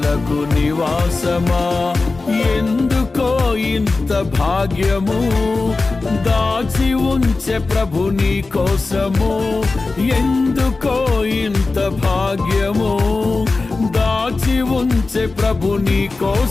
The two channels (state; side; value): quieter; right; 3.6 dB